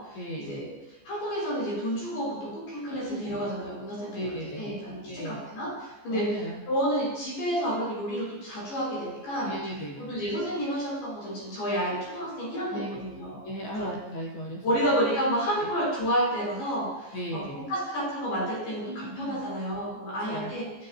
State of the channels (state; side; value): late; right; 14 ms